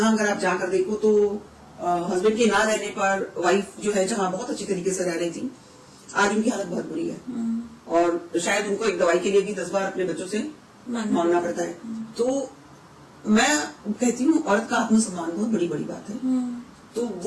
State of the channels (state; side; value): identical; both; correlation 1.00